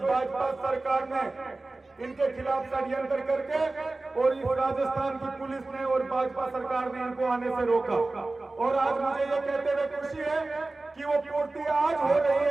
सरकार ने इनके खिलाफ षड्यंत्र करके और इस राजस्थान की पुलिस ने और भाजपा सरकार ने इनको आने से रोका। और आज मुझे ये कहते हुए खुशी है कि वो पूर्ति आज हो रही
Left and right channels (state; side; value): quieter; left; 3.2 dB